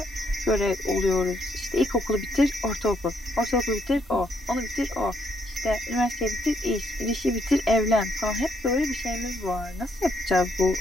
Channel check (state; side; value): normal; both; correlation 0.73